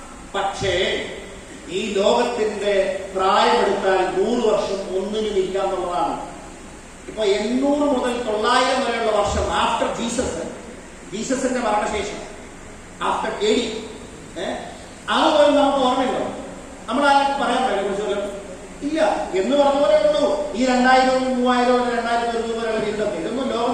പക്ഷേ ഈ ലോകത്തിന്റെ പ്രായമെടുത്താൽ 100 വർഷം ഒന്നിനും ഇല്ല എന്നുള്ളതാണ്. ഇപ്പൊ 800 മുതൽ 900 വരെയുള്ള വർഷം ആഫ്റ്റർ ജീസസിന്റെ മരണശേഷം, ആഫ്റ്റർ AD, അതുപോലെ നമുക്ക് ഓർമ്മയുണ്ടോ? നമ്മളാരും പറയാൻ പറ്റില്ല കുറിച്ചല്ലോ ഇല്ല എന്ന് പറഞ്ഞ പോലെ ഉള്ളൂ. ഈ 2000, 3000, 2000 വരെയുള്ള ജീവിതം ഇതൊന്നും ലോകം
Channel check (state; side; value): identical; both; correlation 1.00